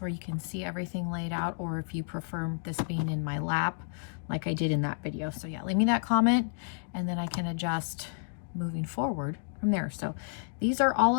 you can see everything laid out, or if you prefer this being in my lap like I did in that video. So yeah, leave me that comment and then I can adjust moving forward from there. So these are all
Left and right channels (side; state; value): right; silent; digital silence